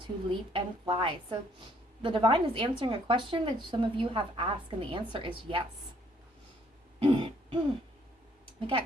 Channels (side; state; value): both; normal; correlation 0.65